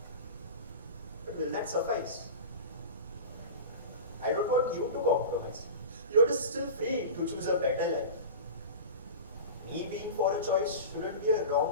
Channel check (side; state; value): both; inverted; correlation -0.31